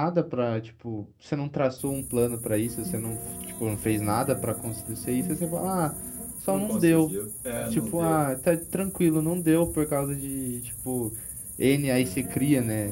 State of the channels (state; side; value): identical; both; correlation 1.00